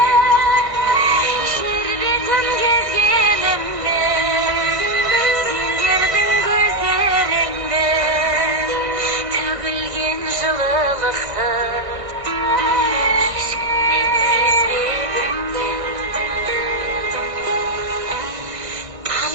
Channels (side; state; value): left; late; 1.6 ms